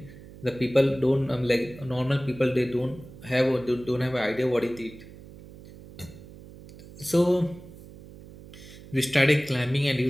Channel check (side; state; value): right; noise; hum, 18 dB below the sound